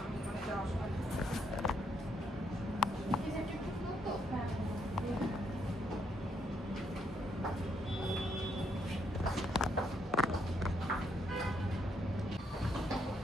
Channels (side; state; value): both; normal; correlation 0.74